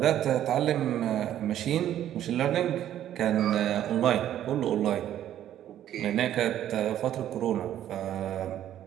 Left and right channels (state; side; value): quieter; left; 11.5 dB